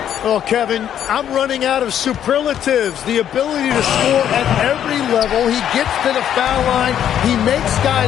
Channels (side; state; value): right; quieter; 10.0 dB